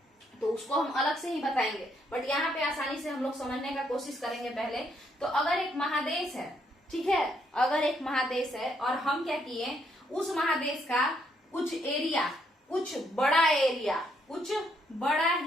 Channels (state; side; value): normal; both; correlation 0.73